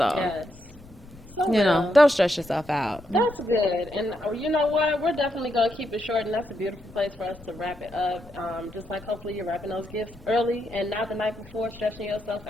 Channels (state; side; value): noise; left; rumble, 21 dB below the sound